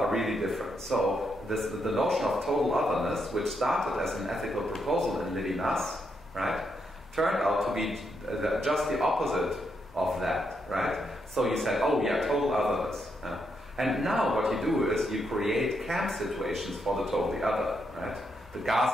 really different. So the notion of total otherness, which started as an ethical proposal in Levinas, right, turned out to be just the opposite of that, right? So you said, oh yeah, total otherness. And now what you do is you create camp situations for the totally other, right? The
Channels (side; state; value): both; normal; correlation 0.80